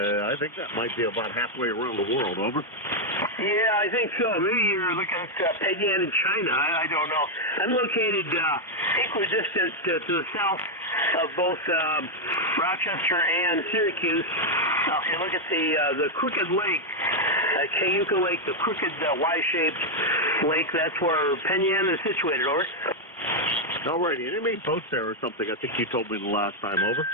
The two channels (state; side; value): normal; both; correlation 0.00